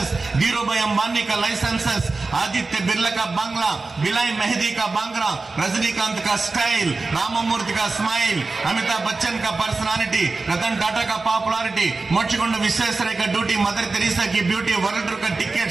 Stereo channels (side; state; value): left; quieter; 3.7 dB